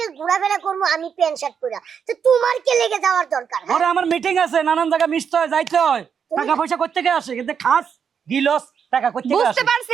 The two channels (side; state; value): left; quieter; 7.1 dB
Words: ঘোরাফেরা করবো আমি প্যান্ট শার্ট পরে, তো তোমার কে লেগে যাওয়ার দরকার? হ্যাঁ? ওরে আমার মিটিং আছে, নানান জায়গায় মিশতে হয়, যাইতে হয়, টাকা পয়সা করতে গিয়ে আসে, কিন্তু খাস গিলস টাকা করতে গিয়ে বুঝতে আসে।